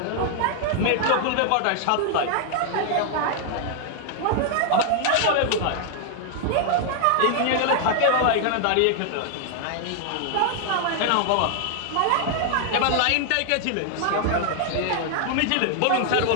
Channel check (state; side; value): different; both; correlation 0.00